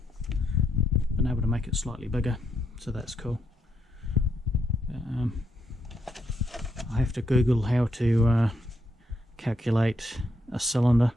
Been able to make it slightly bigger, so that's cool. I have to Google how to calculate a cylinder.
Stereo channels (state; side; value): normal; both; correlation 0.79